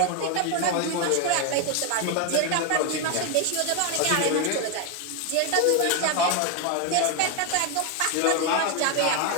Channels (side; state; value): both; different; correlation 0.01